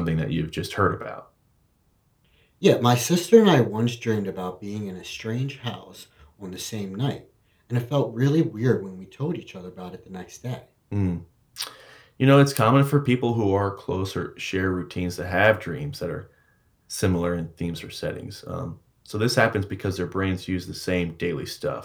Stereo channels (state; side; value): identical; both; correlation 1.00